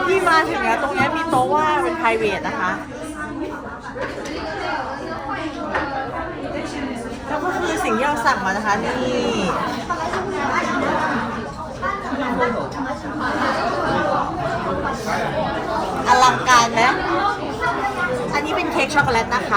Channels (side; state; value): both; identical; correlation 1.00